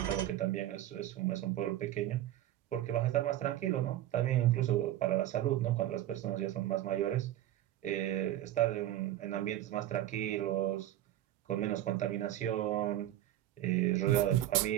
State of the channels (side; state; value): left; quieter; 13.3 dB